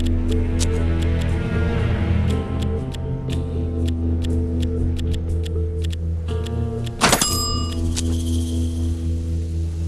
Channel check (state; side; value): identical; both; correlation 1.00